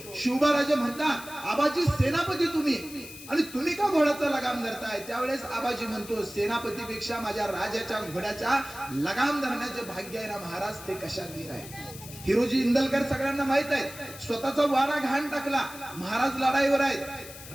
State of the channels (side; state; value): left; noise; hiss, 15 dB below the sound